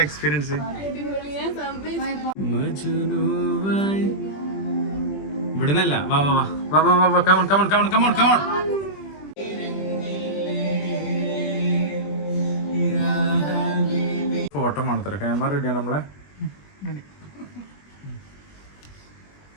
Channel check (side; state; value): right; late; 21 ms